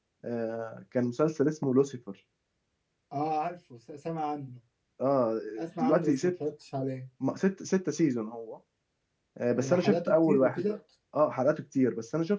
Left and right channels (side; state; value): both; identical; correlation 1.00